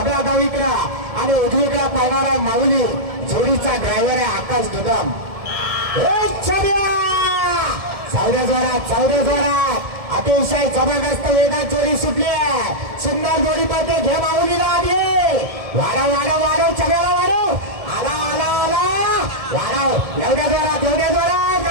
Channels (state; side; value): late; left; 1.7 ms